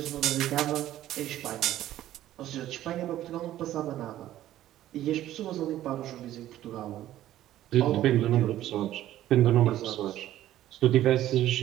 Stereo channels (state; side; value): quieter; left; 13.4 dB